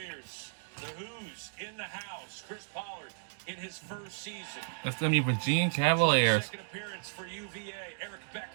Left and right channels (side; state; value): left; silent; digital silence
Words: The Who's in the house. Chris Pollard in his first season. That's going to be Virginia Cavaliers. Second appearance for UVA. Eric